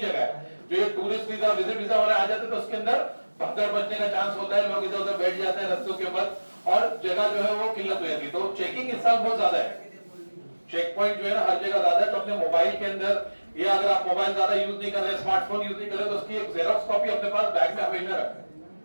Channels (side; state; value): both; inverted; correlation -1.00